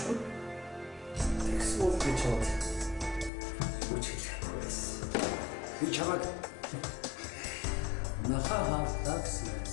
Тэгсэн үг гэж бод. Үуч хэлэхгүйс. Би чамаг нахаа хавтаг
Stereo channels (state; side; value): drops out; right; at 3.3 s